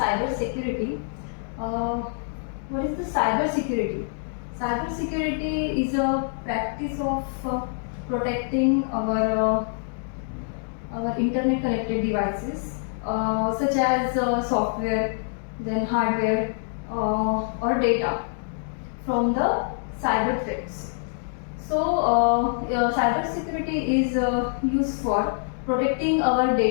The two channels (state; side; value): silent; right; digital silence